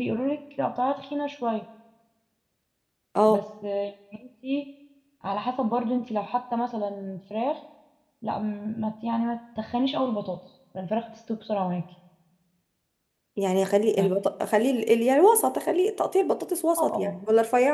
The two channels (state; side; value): identical; both; correlation 1.00